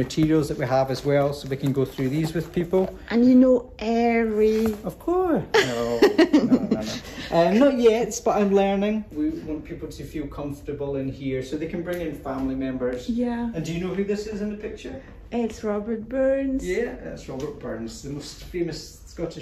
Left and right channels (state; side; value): identical; both; correlation 1.00